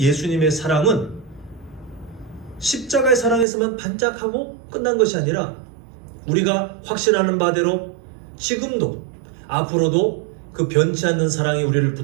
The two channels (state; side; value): drops out; left; at 3.5 s